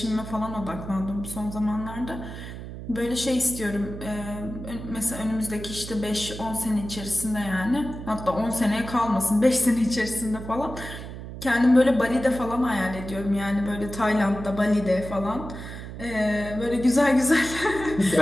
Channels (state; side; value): noise; right; hum, 10 dB below the sound